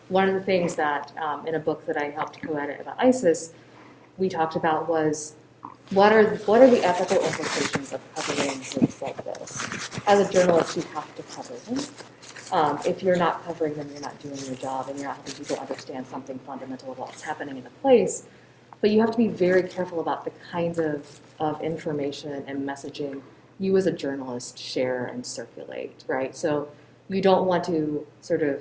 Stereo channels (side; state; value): both; identical; correlation 1.00